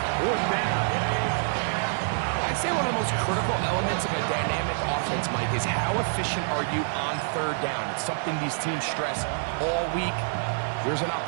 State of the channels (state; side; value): silent; left; digital silence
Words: 4th down. I'd say one of the most critical elements of a dynamic offense, Mike, is how efficient are you on 3rd down? It's something these teams stress all week. There's an